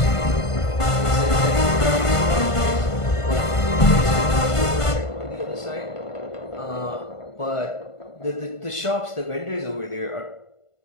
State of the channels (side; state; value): right; late; 1.5 ms